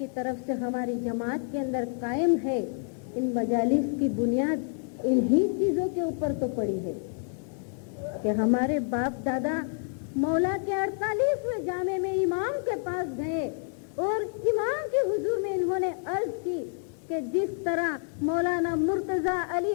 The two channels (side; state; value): right; silent; 59 dB below the other